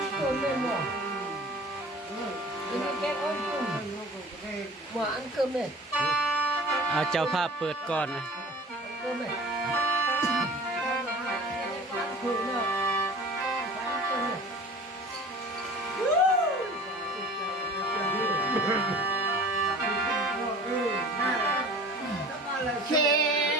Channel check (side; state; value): both; normal; correlation 0.42